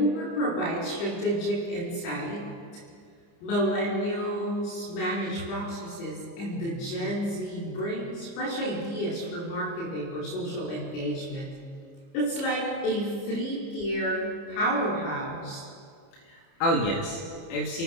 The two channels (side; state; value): right; late; 30 ms